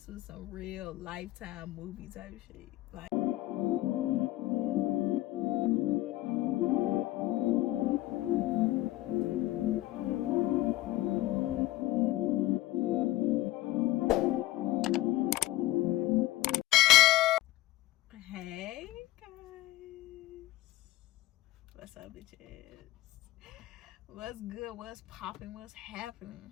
was some real Lifetime movie type shit. Like, hey guys, what's up, bitches? What's good? What's popping? What's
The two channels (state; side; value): quieter; right; 16.6 dB